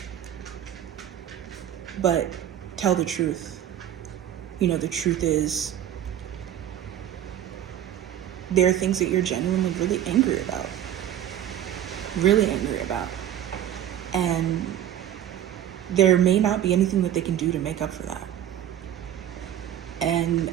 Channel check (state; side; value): quieter; left; 11.1 dB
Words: but tell the truth. The truth is there are things that you're genuinely really angry about. And there may not be anything that they can do to make up for that. And